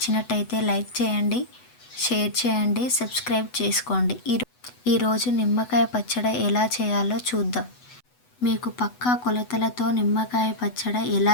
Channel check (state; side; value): late; right; 8.0 ms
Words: లైక్ చేయండి, షేర్ చేయండి, సబ్స్క్రైబ్ చేసుకోండి. ఈరోజు నిమ్మకాయ పచ్చడి ఎలా చేయాలో చూద్దాం. మీకు పక్కా కొలతలతో నిమ్మకాయ పచ్చడి ఎలా